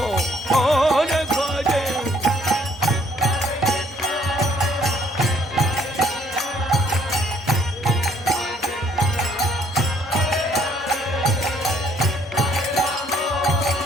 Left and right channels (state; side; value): normal; both; correlation 0.64